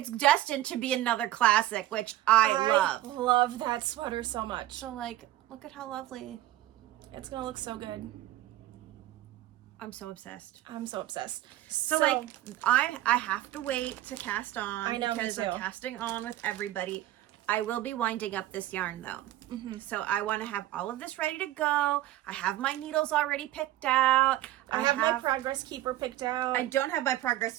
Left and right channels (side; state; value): left; quieter; 14.7 dB